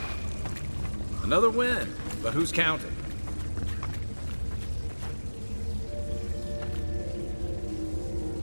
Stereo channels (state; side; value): inverted; both; correlation -1.00